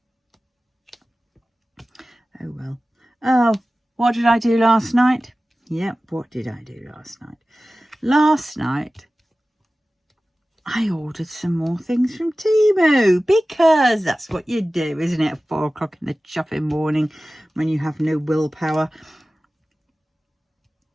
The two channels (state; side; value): normal; both; correlation 0.96